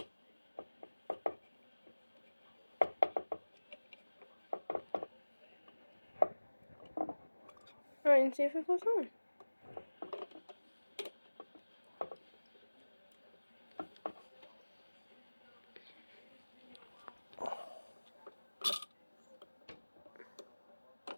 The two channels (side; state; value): both; inverted; correlation -1.00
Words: Alright, and see if it goes on.